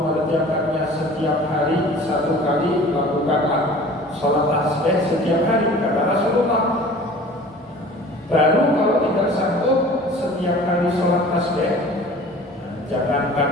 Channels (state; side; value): normal; both; correlation 0.45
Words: setiap hari satu kali, lakukanlah sholat tasbih setiap hari, kata Rasulullah. Baru kalau tidak sanggup setiap hari sholat tasbih, jangankan